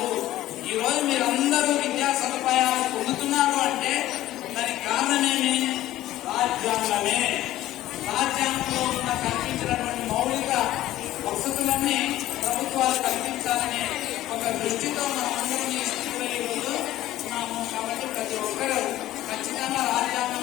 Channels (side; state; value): right; quieter; 14.7 dB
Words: ఈ రోజు మీరందరూ విద్యా సదుపాయాలు పొందుతున్నారు అంటే దానికి కారణమేమి? రాజ్యాంగమే. రాజ్యాంగంలో ఉన్న కల్పించినటువంటి మౌలిక వసతులన్నీ ప్రభుత్వాలు కల్పించాలనే ఒక దృష్టితో మనం అందరం ఈ స్థితిలో ఈరోజు ఉన్నాము. కాబట్టి ప్రతి ఒక్కరూ ఖచ్చితంగా